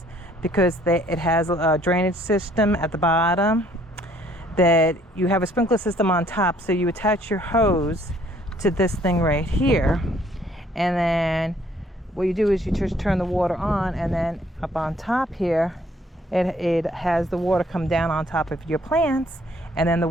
because it has a drainage system at the bottom, that you have a sprinkler system on top. So you attach your hose to this thing right here, and then what you do is you just turn the water on, and then up on top here it has the water come down on top of your plants, and then the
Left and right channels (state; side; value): normal; both; correlation 0.62